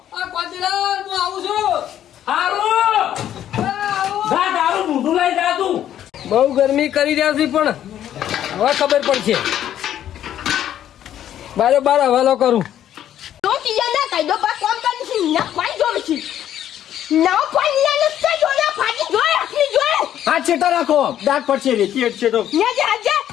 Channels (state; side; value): quieter; right; 11.1 dB